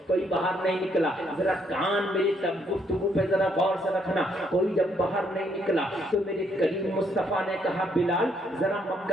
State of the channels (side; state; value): both; normal; correlation 0.72